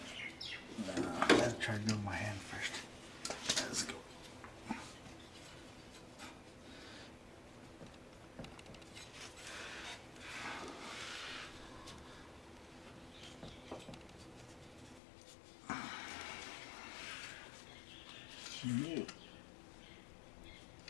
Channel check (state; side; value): drops out; right; at 15.0 s